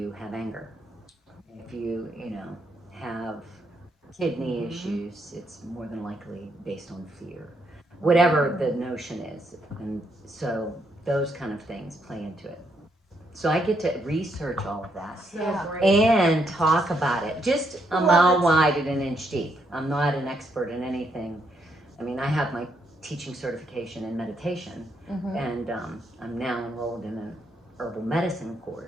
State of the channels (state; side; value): normal; both; correlation 0.76